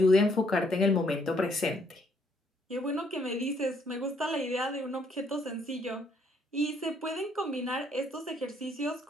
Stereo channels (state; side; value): normal; both; correlation 0.68